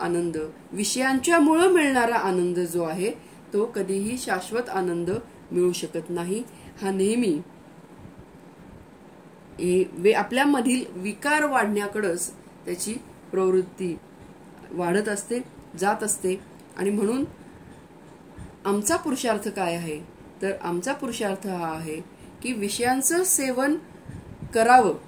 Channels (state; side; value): identical; both; correlation 1.00